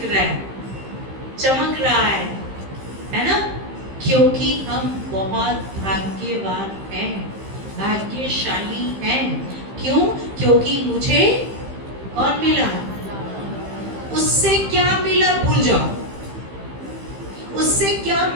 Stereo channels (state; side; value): late; left; 15 ms